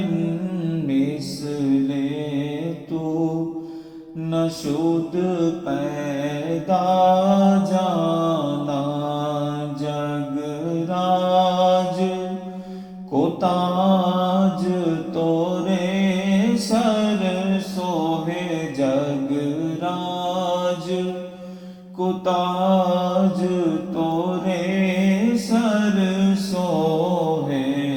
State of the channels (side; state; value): both; identical; correlation 1.00